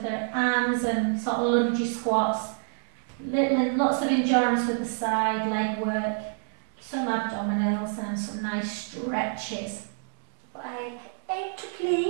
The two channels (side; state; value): left; silent; 60 dB below the other